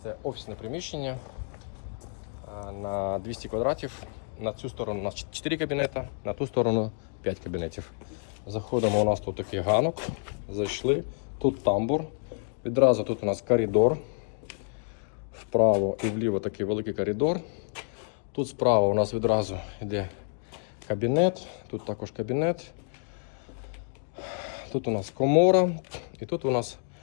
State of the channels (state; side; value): silent; right; 59 dB below the other